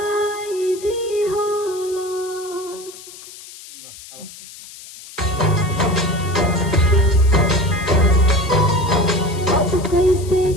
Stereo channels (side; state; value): left; noise; hiss, 17 dB below the sound